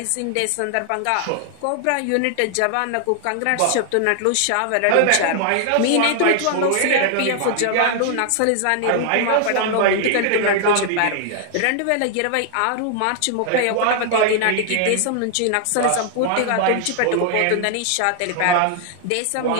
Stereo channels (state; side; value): different; both; correlation 0.00